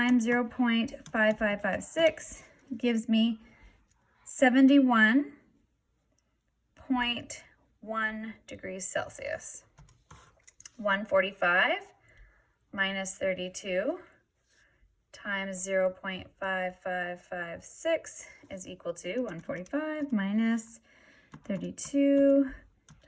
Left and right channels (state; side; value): identical; both; correlation 1.00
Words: 0.5556 gives me 71.1 degrees Celsius. 145 minus 32 times 0.5556 is equal to 145 minus 32